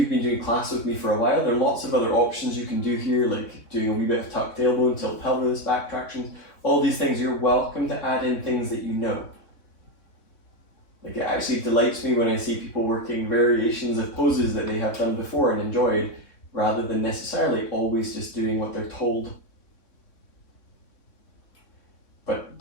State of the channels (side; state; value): right; late; 3.6 ms